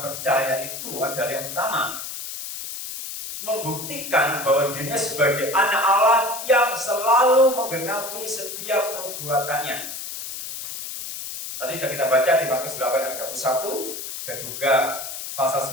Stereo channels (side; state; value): left; noise; hiss, 8 dB below the sound